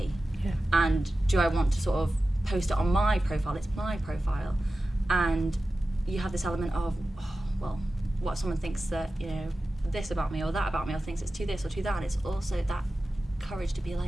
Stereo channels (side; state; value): both; normal; correlation 0.94